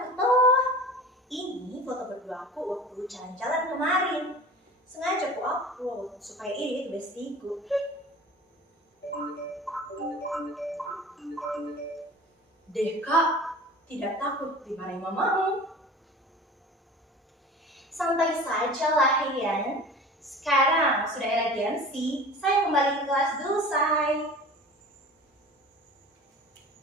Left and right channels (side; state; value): both; normal; correlation 0.39